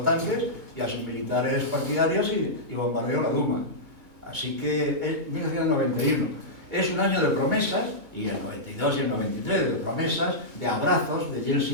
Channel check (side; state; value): left; late; 2.2 ms